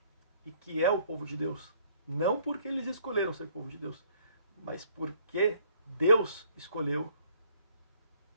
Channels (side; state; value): both; inverted; correlation -0.61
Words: E que é o povo de Deus. Não porque eles escolheram ser povo de Deus, mas porque Deus escolheu